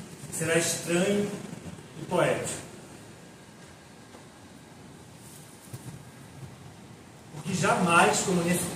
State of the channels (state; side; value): identical; both; correlation 1.00